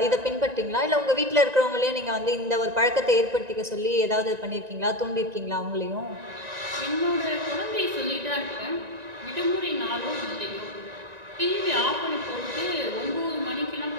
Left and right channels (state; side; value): late; left; 1.9 ms